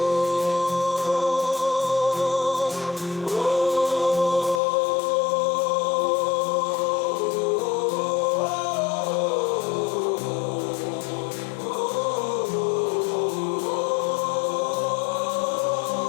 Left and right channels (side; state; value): right; drops out; at 4.6 s